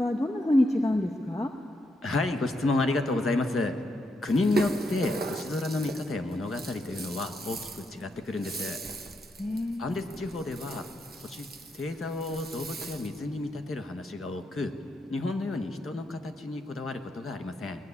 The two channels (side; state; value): both; normal; correlation 0.81